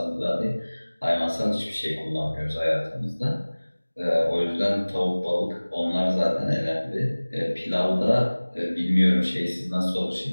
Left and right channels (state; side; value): inverted; both; correlation -1.00